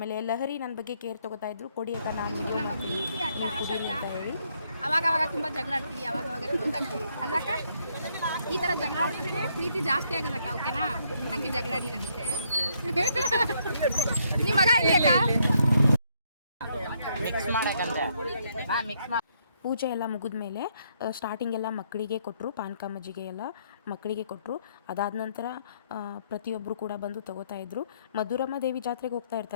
ಲಹರಿ ನನ್ನ ಬಗ್ಗೆ ಕೇರ್ ತೊಗೋತಾಯಿದ್ರು, ಕೊಡಿ ಅಕ್ಕ ನಾನು ಹೇಳಿ. ಅವಾಗ ತುಂಬ ಜಗಳ ಆಡ್ತೀವಿ, ಅವಾಗ ಕ್ಲೋಸ್ ಆಗ್ತೀವಿ ಅಲ್ಲಕ್ಕ. ಈ ಥರ ಜಗಳ ಆಡಿದ್ರೆ ಪ್ರೀತಿ ಜಾಸ್ತಿ ಆಗೋದಕ್ಕ, ಓಕೆನಾ? ಹಂಗೆ ಜಗಳ ಆಡಿ ನನಗೆ. ನಿಮ್ಮ ಮಗ ಇಲ್ಲಿ ಅಕ್ಕ? ಪೂಜೆ ಎಲ್ಲ ಮುಗಿದ ಮೇಲೆ ಸ್ಟಾರ್ಟಿಂಗೆಲ್ಲ ಮಕ್ಕಳಿಗೆ ಕೊಟ್ಟರು. ಪಾನಕ, ಮಜ್ಜಿಗೆ ಎಲ್ಲ ಮಕ್ಕಳಿಗೆ ಕೊಟ್ಟರು. ಅದಾದ ನಂತರ ಪ್ರತಿಯೊಬ್ಬರು ಕೂಡ ಬಂದು ತೊಗೋತಾಯಿದ್ರು. ಮಧುರಮ್ಮ ದೇವಿ ಜಾತ್ರೆಗೆ ಹೋಗ್ತಾ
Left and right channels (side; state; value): both; inverted; correlation -0.72